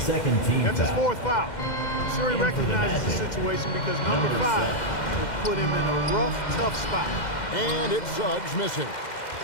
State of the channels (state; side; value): late; right; 2.1 ms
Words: Second team That's his foul. 4th foul. I'm sure he And for the recognizes the Magic, situation because number number 5 7. will put him in a rough, tough spot. And it's Suggs missing.